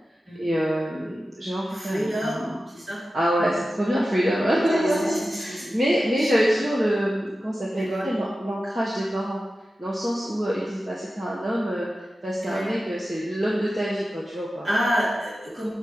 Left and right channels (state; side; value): normal; both; correlation 0.93